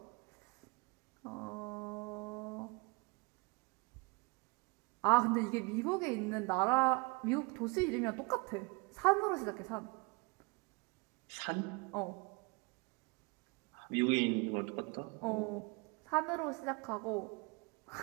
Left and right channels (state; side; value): quieter; left; 28.4 dB